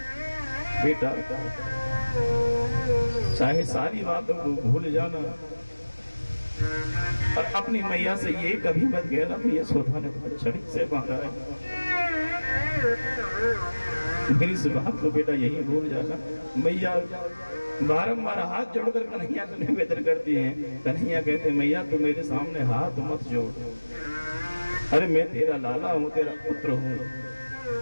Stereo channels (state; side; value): inverted; both; correlation -1.00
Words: बेटा चाहे सारी बातों को भूल जाना, और अपनी मैया से ये कभी मत कहना कि यशोदा ने तुम्हें छड़ी से मारा है। मेरी इस बात को बेटा यही भूल जाना। मैया बारंबार हाथ जोड़कर कन्हैया को निवेदन करती हैं। कन्हैया कहते मैया तू मेरे सामने हाथ मत जोड़, अरे मैं तेरा लाला हूँ, तेरा पुत्र हूँ,